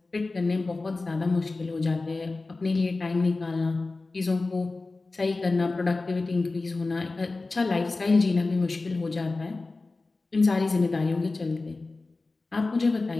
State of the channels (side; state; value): right; quieter; 3.5 dB